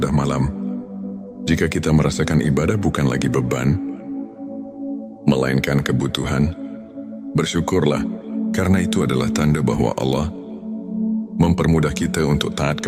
malam. Jika kita merasakan ibadah bukan lagi beban, melainkan kebutuhan, bersyukurlah, karena itu adalah tanda bahwa Allah mempermudah kita untuk taat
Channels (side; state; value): both; identical; correlation 1.00